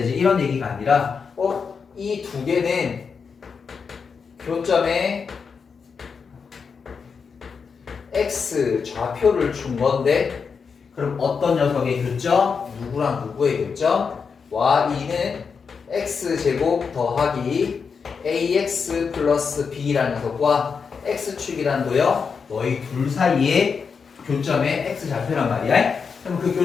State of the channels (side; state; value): right; quieter; 5.7 dB